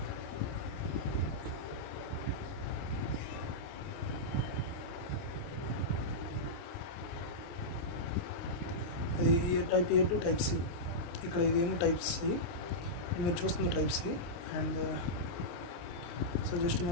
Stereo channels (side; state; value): right; late; 29 ms